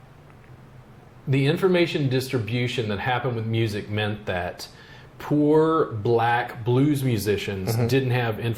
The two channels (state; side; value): identical; both; correlation 1.00